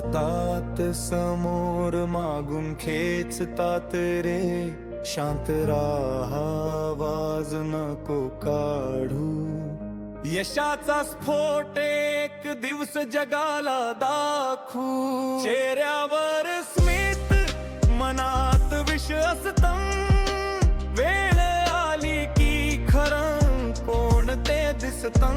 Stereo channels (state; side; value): identical; both; correlation 1.00